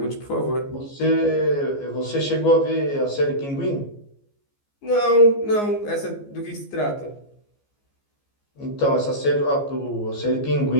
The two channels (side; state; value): right; late; 14 ms